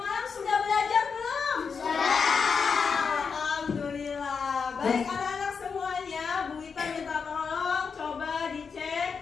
sudah belajar belum? Sudah. Alhamdulillah. Baik anak-anak semuanya, Bu Ita minta tolong coba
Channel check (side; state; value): right; quieter; 5.7 dB